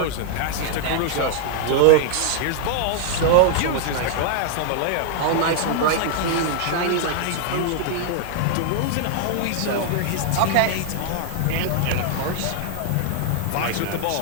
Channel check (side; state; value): both; different; correlation 0.00